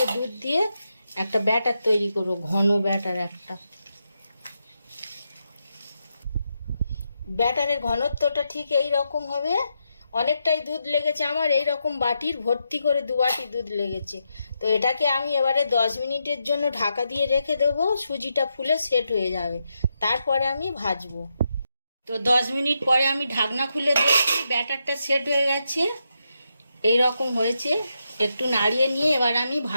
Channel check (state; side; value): inverted; both; correlation -0.84